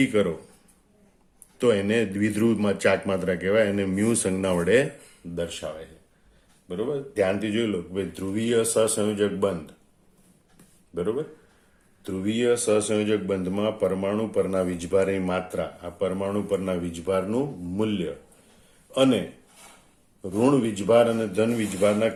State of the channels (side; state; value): both; identical; correlation 1.00